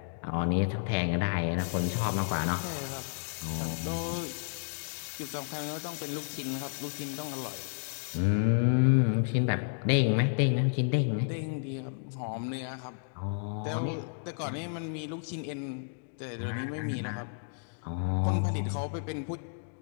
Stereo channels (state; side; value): silent; right; digital silence